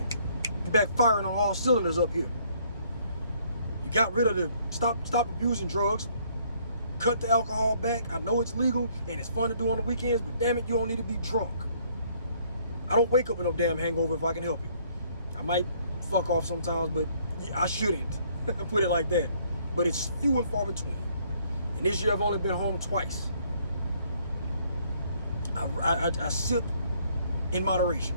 You're back firing on all cylinders up here. You got rid of the stop abusing drugs. Cut the alcohol back. I know it's legal and it's fun to do on the weekends, but damn it, you don't need to be drunk. I don't wake up with no damn hangover if I can help it. I might fuck off sometimes, but I shouldn't. Put it like that. But it's few and far between. And this year I've only been home twice. I sip in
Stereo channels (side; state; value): both; inverted; correlation -0.64